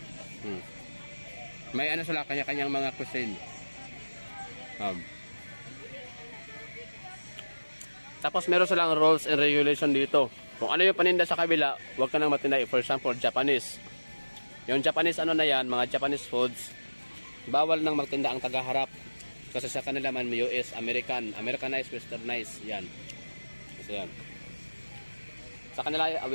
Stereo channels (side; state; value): both; inverted; correlation -1.00